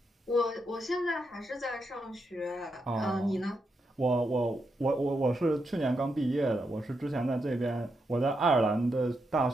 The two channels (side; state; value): both; normal; correlation 0.83